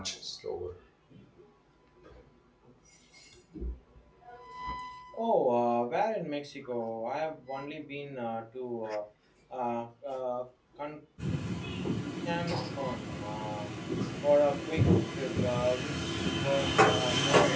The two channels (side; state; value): both; identical; correlation 1.00